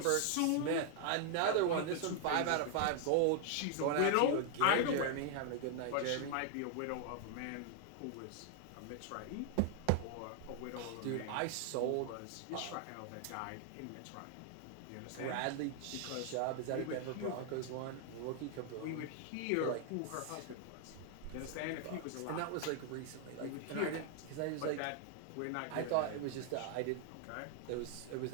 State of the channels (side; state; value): both; different; correlation 0.00